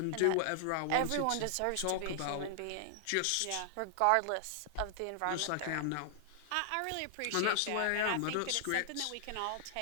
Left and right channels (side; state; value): both; different; correlation -0.01